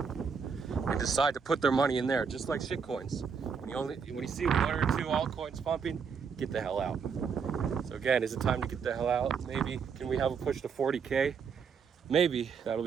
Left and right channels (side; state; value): left; quieter; 6.1 dB